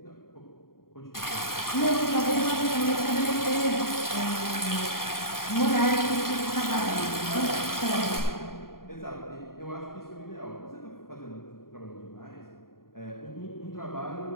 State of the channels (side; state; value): right; late; 0.92 ms